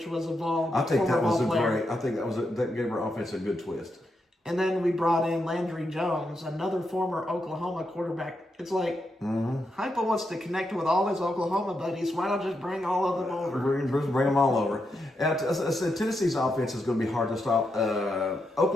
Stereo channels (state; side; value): normal; both; correlation 0.84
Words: was a I think former that was ball a player. great. I think that gave our offense a good twist. And then we brought in Landry Jones, another former Oklahoma quarterback. It's like Hypo wants to connect with all his Oklahoma buddies. Why not just bring all of them over? Bring them all over. And I said Tennessee's offense is going to be hard to stop.